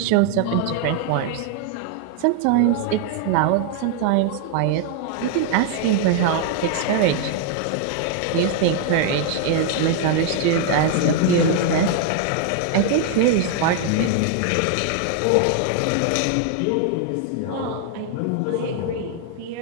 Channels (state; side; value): different; both; correlation 0.00